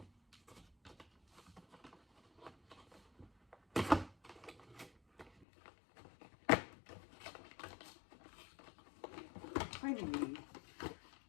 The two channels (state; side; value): drops out; right; at 5.5 s